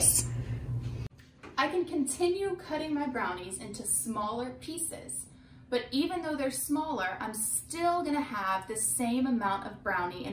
I can continue cutting my brownies into smaller pieces. But even though they're smaller, I'm still gonna have the same amount of brownie in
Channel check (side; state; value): both; identical; correlation 1.00